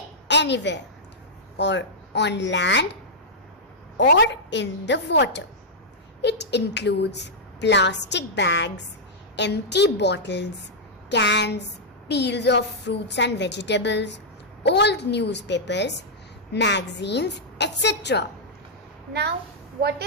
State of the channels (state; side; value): normal; both; correlation -0.08